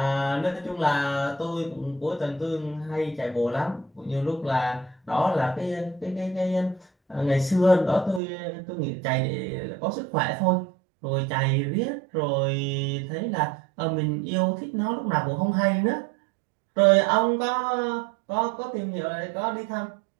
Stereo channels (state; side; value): drops out; left; at 8.2 s